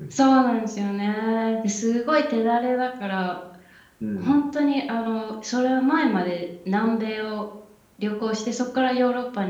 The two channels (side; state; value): both; identical; correlation 1.00